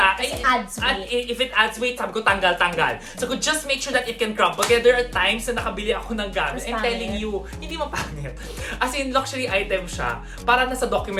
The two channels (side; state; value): both; identical; correlation 1.00